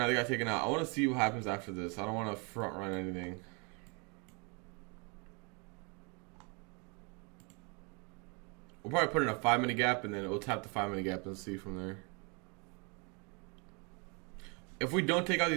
They got taken out. I want to see what happens after this. I don't want to front run anything. We'll probably put in a 5-minute gap, and then we'll tap the 5-minute gap and see from there. If we don't take out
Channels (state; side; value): quieter; left; 33.1 dB